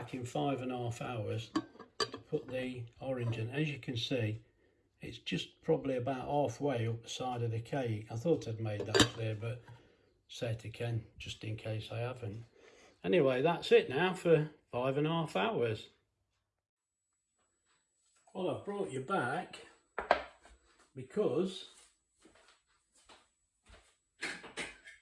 in 5.5 hours to put the orange in. As you can see, it's just probably about halfway up the side of the cake. I thought I'd made that clear, but say it again, just in case I haven't. Anyway, that's it now for 5.5 hours. Well, I've brought you back because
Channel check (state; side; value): identical; both; correlation 1.00